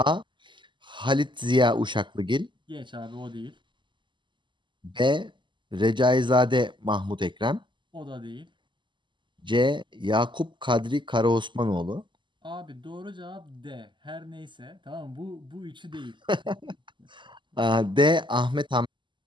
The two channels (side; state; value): left; late; 0.23 ms